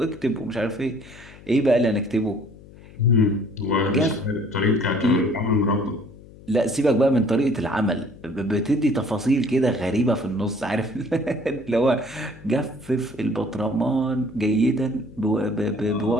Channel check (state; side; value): noise; left; hum, 20 dB below the sound